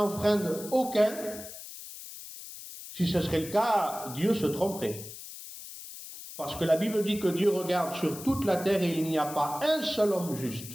aucun? Si ce serait le cas, Dieu se tromperait. Parce que la Bible dit que Dieu regarde sur toute la terre et il n'y a pas un seul homme juste.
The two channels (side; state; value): left; noise; hiss, 13 dB below the sound